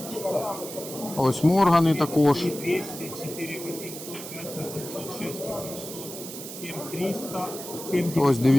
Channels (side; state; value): right; noise; hiss, 10 dB below the sound